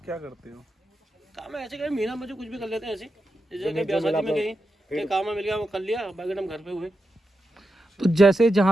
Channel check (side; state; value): both; normal; correlation 0.88